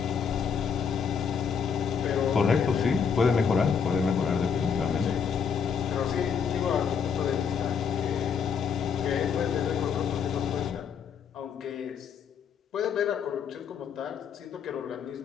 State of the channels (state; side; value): quieter; right; 6.6 dB